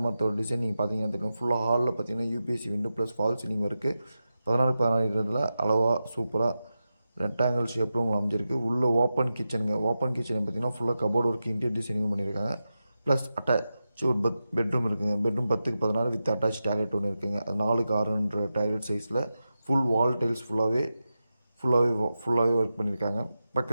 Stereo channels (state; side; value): inverted; both; correlation -0.91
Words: மரத்தோட டிசைன் நீங்கள் பார்த்தீங்கன்னா தெரியும். ஃபுல்லாக ஹாலில் பார்த்தீங்கன்னா UPSC window plus fall ceiling இருக்குது. 16x16 அளவாக சூப்பராக ரெக்டாங்கிள் ஷேப்பில் உங்களுக்கு அமைஞ்சிருக்கு. உள்ளே ஓப்பன் கிச்சனுங்க. ஓப்பன் கிச்சன் பார்த்திங்கன்னா ஃபுல்லாக கபோர்டு ஒர்க், இன்டீரியர் டிசைனிங் பண்ணியிருக்காங்க. ப்ளஸ் அட்டாச் ஒரு பெட்ரூம் இருக்குங்க. Bedroom 10x16 with attach toilet ஒன்று இருக்குங்க. அது 4x6 டாய்லெட் சைஸில் ஃபுல் வால் டைல்ஸ் ஃபுல்லாகவே ஒர்க் பண்ணியிருக்காங்க.